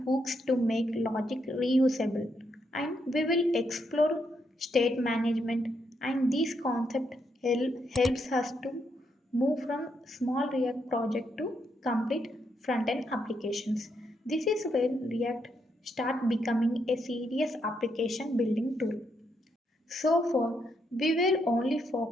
hooks to make logic reusable. And we will explore state management. And this concept helps us to move from small React project to complete front-end applications. This is where React start becoming a serious application building tool. So far, we were only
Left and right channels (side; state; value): both; normal; correlation 0.78